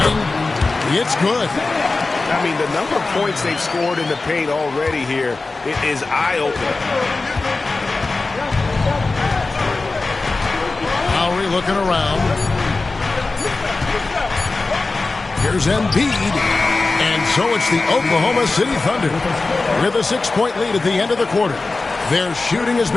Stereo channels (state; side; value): quieter; right; 3.6 dB